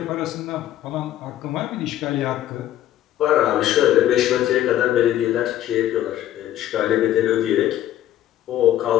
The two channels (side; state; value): right; quieter; 12.5 dB